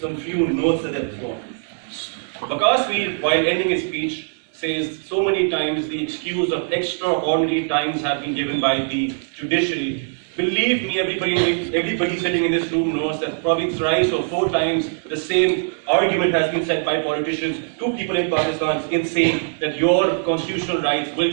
some few notes that they've formed. Waqas Mir, while ending his speech, says so many times the excuse of extraordinary times have been given by the judiciary. Believe me, everybody sitting in this room knows that probably thrice or 4 times the same argument has been said by politicians to people in Pakistan in saying that your constitutional rights will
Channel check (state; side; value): silent; left; digital silence